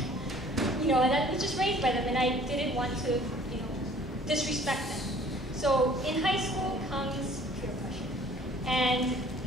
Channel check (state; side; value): normal; both; correlation 0.53